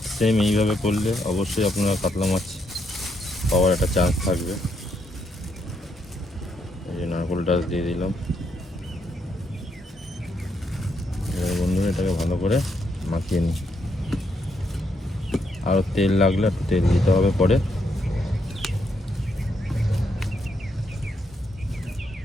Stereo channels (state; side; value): normal; both; correlation 0.77